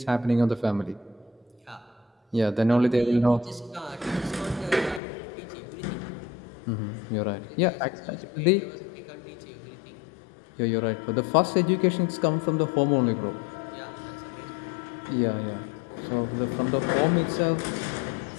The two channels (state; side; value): drops out; right; at 5.0 s